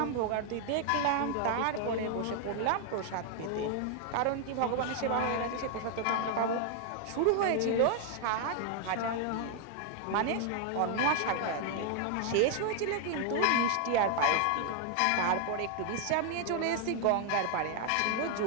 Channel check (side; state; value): both; different; correlation 0.00